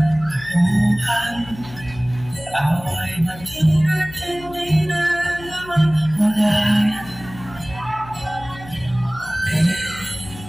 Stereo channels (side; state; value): left; noise; hum, 17 dB below the sound